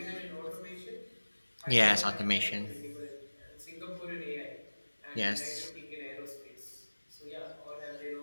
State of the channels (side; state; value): both; inverted; correlation -1.00